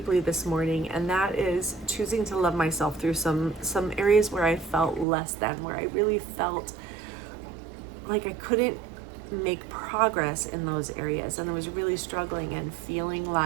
this morning, and that is choosing to love myself through some areas where I felt less than, where I really felt like I couldn't make progress in those areas, and I was really struggling and feeling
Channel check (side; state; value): left; drops out; at 5.1 s